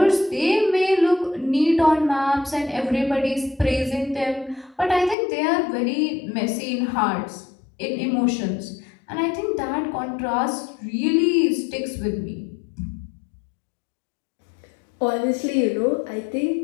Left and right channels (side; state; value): right; drops out; at 5.2 s